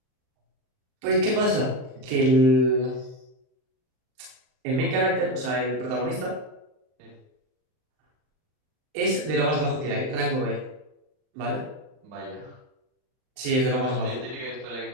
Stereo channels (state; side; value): late; left; 39 ms